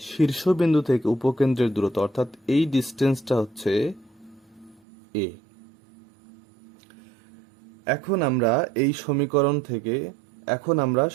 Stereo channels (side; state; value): left; drops out; at 4.8 s